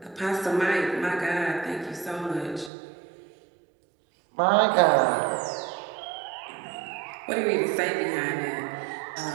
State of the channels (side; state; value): left; drops out; at 2.7 s